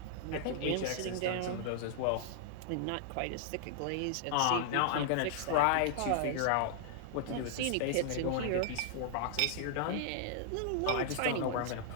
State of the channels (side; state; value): both; different; correlation -0.01